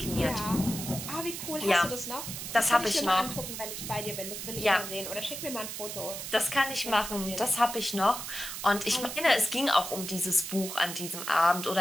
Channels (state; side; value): noise; right; hiss, 7 dB below the sound